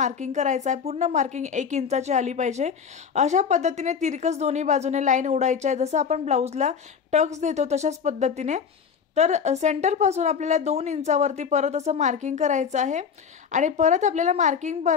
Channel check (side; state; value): right; quieter; 6.7 dB